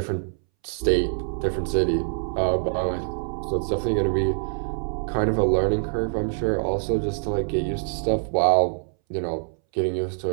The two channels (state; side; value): silent; left; 62 dB below the other